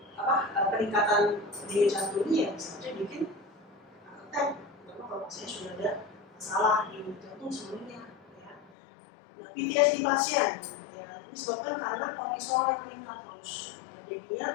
peningkatan denyut jantungnya ya bisa saja bikin attack, terutama kalau pasiennya sudah ada masalah di jantung sebelumnya. Ya. Nah, PTSD pasien, ya, ini disebabkan karena kortisol yang meningkat terus, ya,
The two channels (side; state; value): right; drops out; at 8.7 s